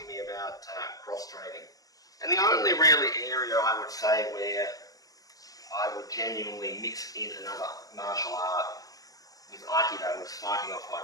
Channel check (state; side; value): late; right; 0.18 ms